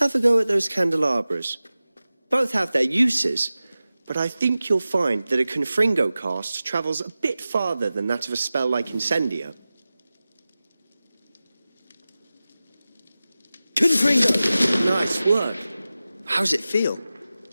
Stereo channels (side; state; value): both; inverted; correlation -0.96